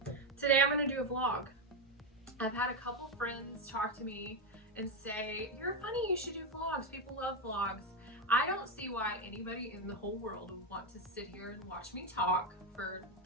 Today I'm gonna do a vlog. I've had a couple friends talk to me and say, "You're funny, you should do vlogs. People love vlogs." I don't see why anybody in the whole world would want to sit here and watch me talk for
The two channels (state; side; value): normal; both; correlation 0.08